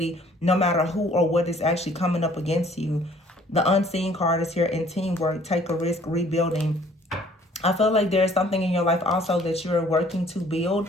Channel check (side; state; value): both; normal; correlation 0.57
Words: no matter who or what is actually coming up against you. The unseen card is here in teamwork, take a risk, rebuilding. I feel like there's something in your life also that you're working to build,